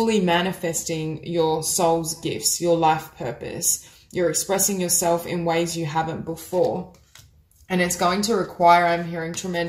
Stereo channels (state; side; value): identical; both; correlation 1.00